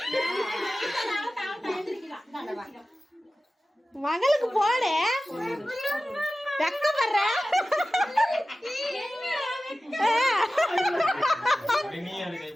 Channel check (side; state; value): both; normal; correlation 0.96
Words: மகளுக்கு போடு வெக்கப்படுற